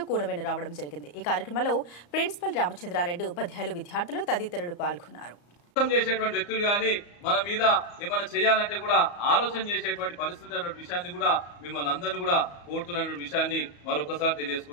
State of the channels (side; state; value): right; late; 34 ms